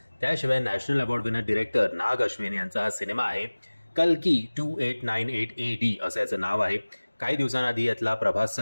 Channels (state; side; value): inverted; both; correlation -1.00